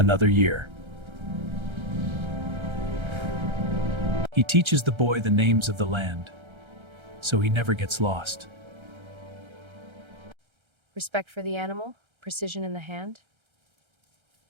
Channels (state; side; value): late; left; 1.3 ms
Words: year. He teaches the boy the names of the land, so he never gets lost. Respect for the animal, precision in the hand.